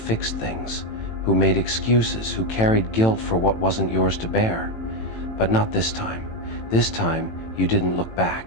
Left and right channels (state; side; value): late; right; 18 ms